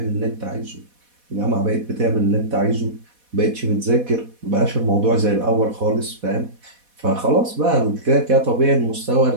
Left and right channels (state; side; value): late; left; 4.1 ms